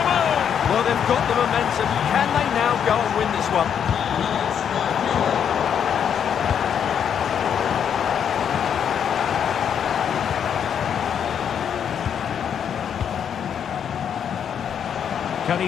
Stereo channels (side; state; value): right; quieter; 8.2 dB